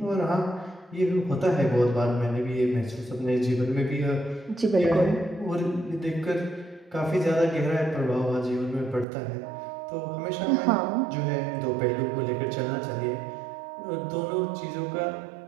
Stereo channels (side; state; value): left; drops out; at 9.1 s